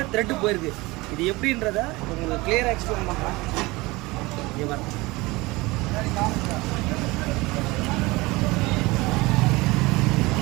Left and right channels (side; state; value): left; quieter; 22.3 dB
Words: த்ரெட்டு போயிருக்கு. இது எப்படின்றத உங்களுக்கு கிளியராக எக்ஸ்பிளைன் பண்ணுறேன்.